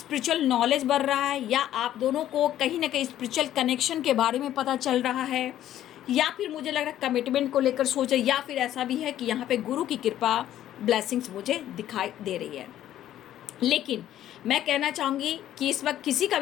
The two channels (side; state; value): right; quieter; 12.2 dB